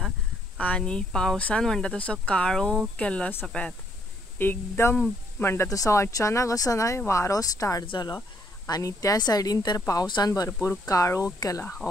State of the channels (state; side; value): normal; both; correlation 0.69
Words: आनी पावसान म्हणटा तसो काळोख केल्लो आसा पळयात। एकदम म्हणटा तसो अचानक असो न्हय वारो स्टार्ट जालो आनी त्या सायडीन तर पावसान भरपूर काळोख केला,